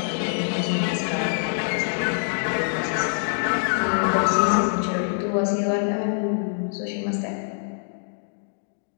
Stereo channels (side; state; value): right; silent; digital silence